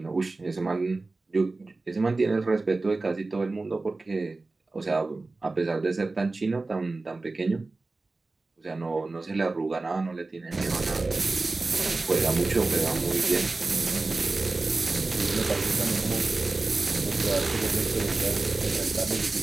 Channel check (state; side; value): quieter; left; 3.4 dB